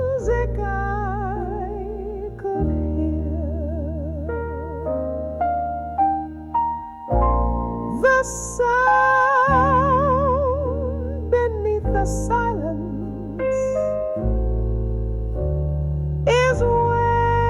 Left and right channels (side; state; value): both; identical; correlation 1.00